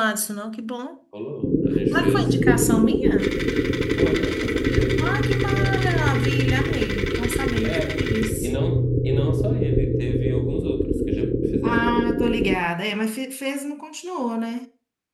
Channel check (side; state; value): both; identical; correlation 1.00